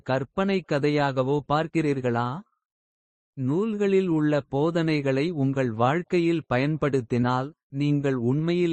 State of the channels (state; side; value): identical; both; correlation 1.00